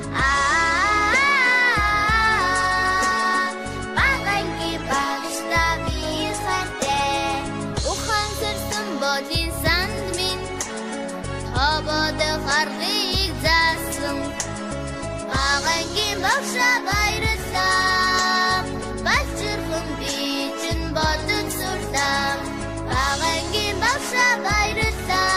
багангийн багшаа би хайртай ухан сэрсэн бодин санд минь хободох аргыг заасан багангийн багшаа баярлалаа балчирхан би чинь бодож сурлаа багангийн багшаа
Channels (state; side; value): identical; both; correlation 1.00